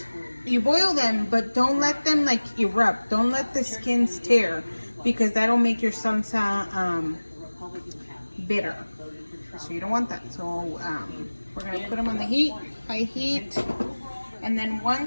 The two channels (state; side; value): inverted; both; correlation -1.00